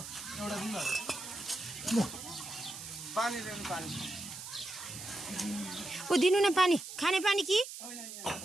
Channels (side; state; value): right; noise; hiss, 10 dB below the sound